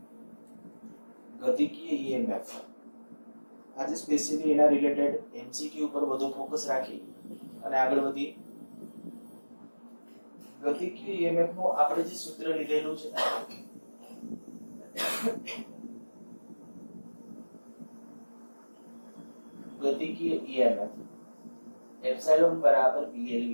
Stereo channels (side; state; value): both; inverted; correlation -1.00